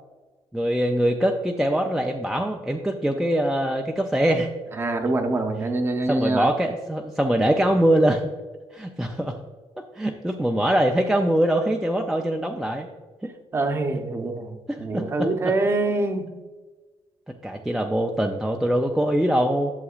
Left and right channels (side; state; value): both; normal; correlation 0.86